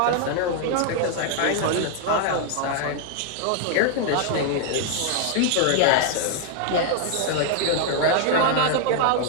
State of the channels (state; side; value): different; both; correlation 0.00